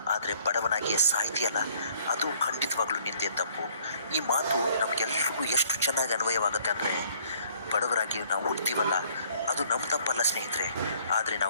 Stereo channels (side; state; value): both; inverted; correlation -0.60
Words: ಆದರೆ ಬಡವನಾಗಿಯೇ ಸಾಯ್ತೀಯಲ್ಲ, ಅದು ಖಂಡಿತವಾಗ್ಲೂ ನಿಂದೆ ತಪ್ಪು. ಈ ಮಾತು ನಮಗೆಲ್ಲರಿಗೂ ಎಷ್ಟು ಚೆನ್ನಾಗಿ ಅನ್ವಯವಾಗುತ್ತೆ ಅಂದರೆ, ಬಡವರಾಗಿ ನಾವು ಹುಡ್ತೀವಲ್ಲ, ಅದು ನಮ್ಮ ತಪ್ಪಲ್ಲ ಸ್ನೇಹಿತರೆ. ಆದರೆ